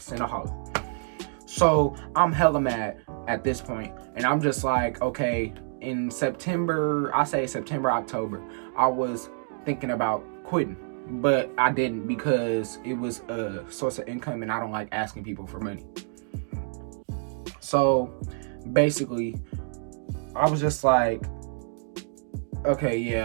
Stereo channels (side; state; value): left; silent; digital silence